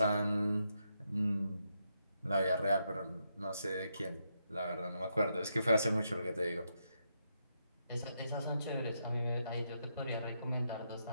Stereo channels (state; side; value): inverted; both; correlation -0.81